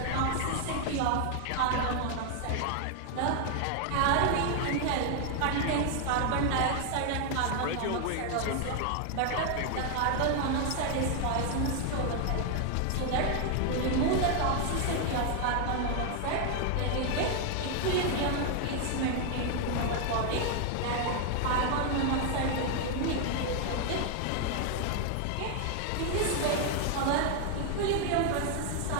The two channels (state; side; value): different; both; correlation 0.00